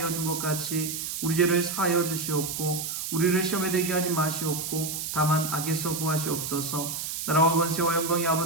준 것 같이 우리 죄를 사하여 주시옵고 우리를 시험에 들게 하지 마시옵고 다만 악에서 구하시옵소서. 나라와 권세와 영광이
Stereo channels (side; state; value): right; noise; hiss, 4 dB below the sound